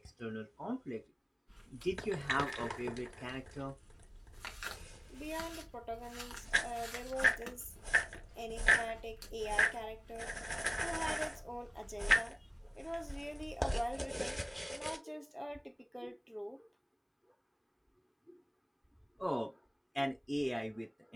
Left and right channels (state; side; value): identical; both; correlation 1.00